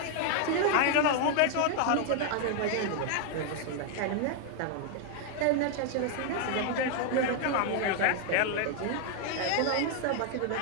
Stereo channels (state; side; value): different; both; correlation 0.00